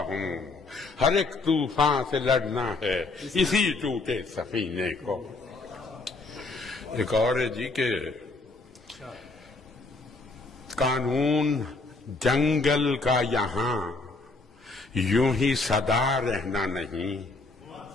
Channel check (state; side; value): quieter; right; 3.4 dB